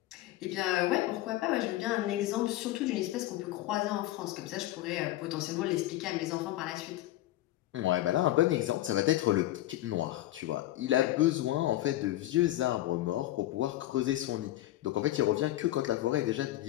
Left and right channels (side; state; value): right; quieter; 15.2 dB